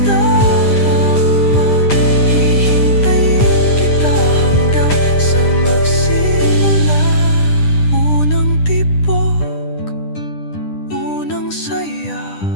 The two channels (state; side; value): late; right; 10 ms